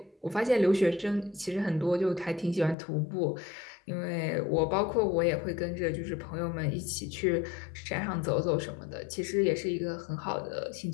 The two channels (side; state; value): right; drops out; at 2.8 s